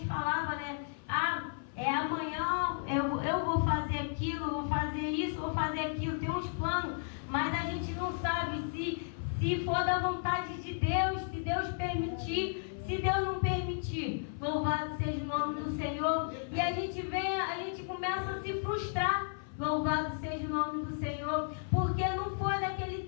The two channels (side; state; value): right; silent; 55 dB below the other